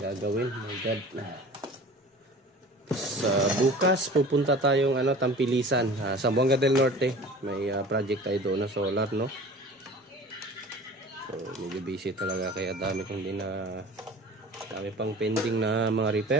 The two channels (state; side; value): normal; both; correlation 0.41